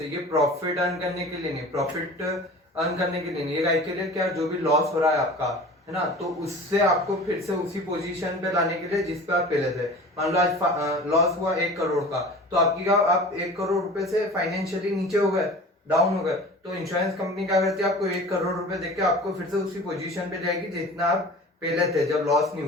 ये प्रॉफिट अर्न करने के लिए नहीं, प्रॉफिट अर्न करने के लिए नहीं, ये के लिए क्या, जो भी लॉस हो रहा है आपका, है ना, तो उससे आपको फिर से उसी पोजीशन पे लाने के लिए जिस पे आप पहले थे। मान लो आज लॉस हुआ 1 करोड़ का, तो आपकी क्या, आप 1 करोड़ रुपए से फाइनेंशियली नीचे हो गए, डाउन हो गए, तो इंश्योरेंस कंपनी क्या करती है, आपको 1 करोड़ रुपए देके आपको फिर से उसी पोजीशन पे जाएगी जितना आप पहले थे जब लॉस नहीं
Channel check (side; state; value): both; normal; correlation 0.39